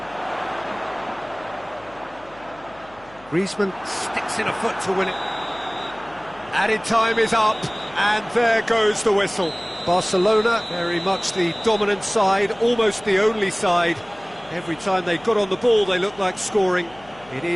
Griezmann sticks in a foot to win it. Added time is up, and there goes the whistle. Barcelona, very much the dominant side, almost the only side. Every time they got on the ball, they looked like scoring. It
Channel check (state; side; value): noise; left; hum, 24 dB below the sound